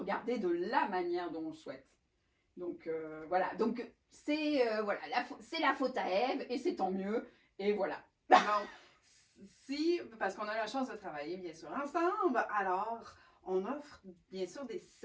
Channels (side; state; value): both; identical; correlation 1.00